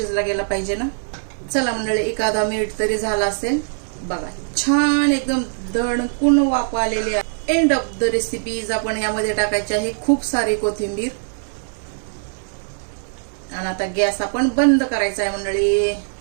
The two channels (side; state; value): left; silent; digital silence